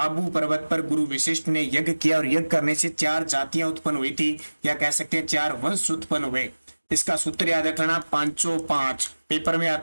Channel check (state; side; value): inverted; both; correlation -1.00